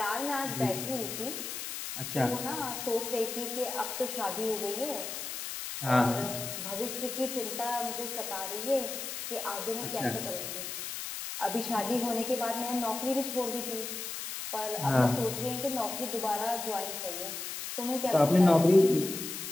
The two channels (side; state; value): left; noise; hiss, 6 dB below the sound